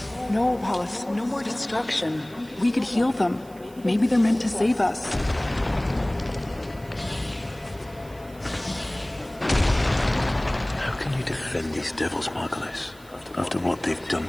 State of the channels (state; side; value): noise; right; hiss, 25 dB below the sound